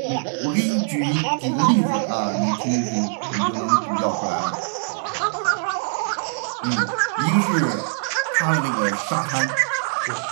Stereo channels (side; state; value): left; silent; digital silence